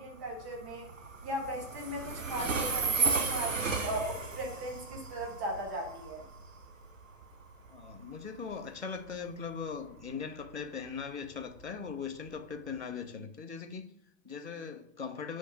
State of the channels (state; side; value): late; left; 1.1 ms